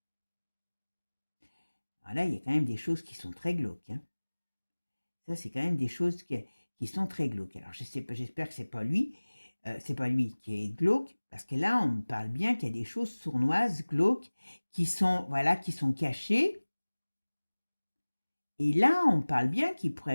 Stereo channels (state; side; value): inverted; both; correlation -1.00